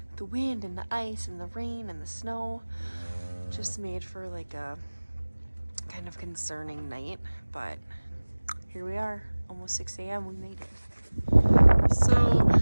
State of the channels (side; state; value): both; inverted; correlation -1.00